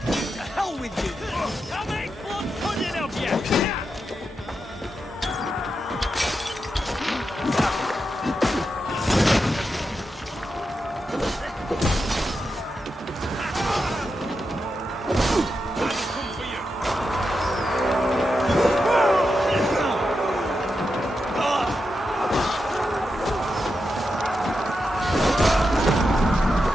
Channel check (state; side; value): normal; both; correlation 0.87